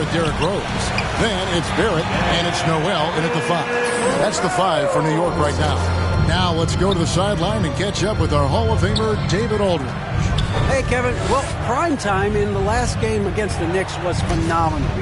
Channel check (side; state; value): both; identical; correlation 1.00